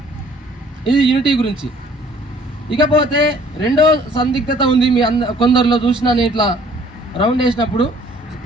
ఇది యూనిటీ గురించి. ఇకపోతే రెండో సందిగ్ధత ఉంది. మీ కొందరిలో చూసిన నేను ఇట్లా రౌండ్ వేసినప్పుడు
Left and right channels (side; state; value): both; normal; correlation 0.57